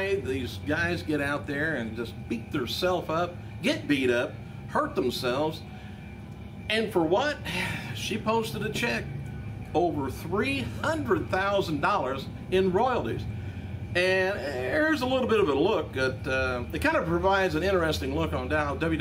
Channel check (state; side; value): identical; both; correlation 1.00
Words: these guys get out there and just beat themselves up, get beat up, hurt themselves. And for what? She posted a check over $300,000 in royalties. And here's a little bit of a look at, it kind of provides an interesting look on how